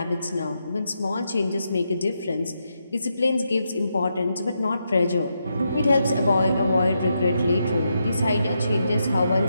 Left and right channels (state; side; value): inverted; both; correlation -0.83